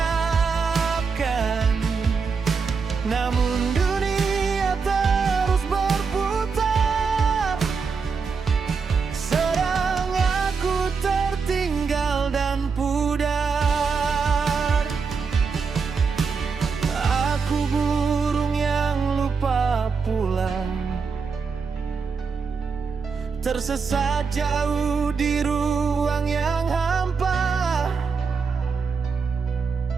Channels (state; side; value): quieter; left; 5.3 dB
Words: Namun dunia terus berputar, sedang aku tertinggal dan pudar. Aku burung yang lupa pulang, tersesat jauh di ruang yang hampa.